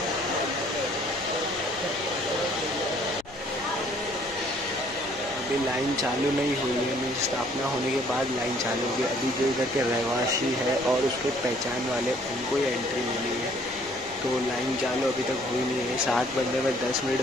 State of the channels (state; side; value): noise; left; rumble, 24 dB below the sound